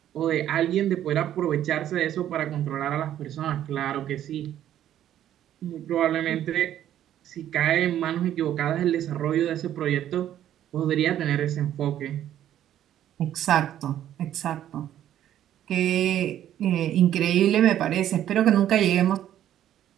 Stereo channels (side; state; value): left; quieter; 11.4 dB